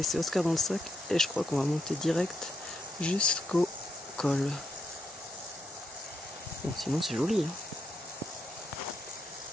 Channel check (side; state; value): both; normal; correlation 0.80